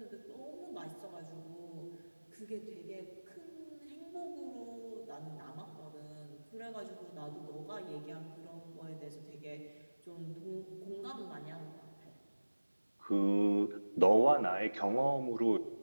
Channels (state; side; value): inverted; both; correlation -1.00